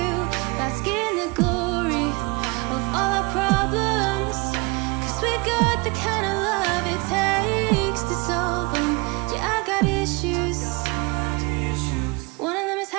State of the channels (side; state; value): left; quieter; 26.7 dB